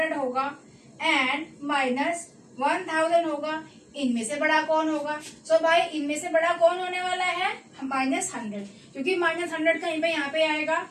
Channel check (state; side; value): identical; both; correlation 1.00